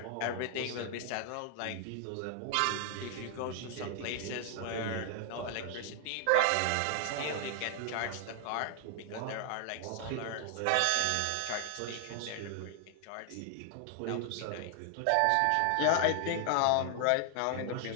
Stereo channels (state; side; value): different; both; correlation 0.00